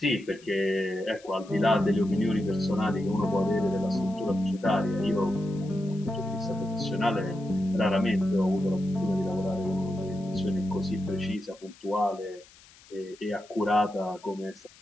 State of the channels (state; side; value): noise; left; hiss, 25 dB below the sound